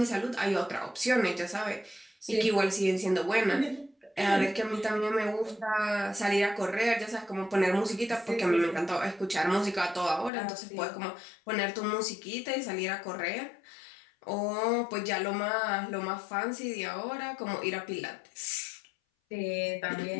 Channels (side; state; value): right; drops out; at 10.3 s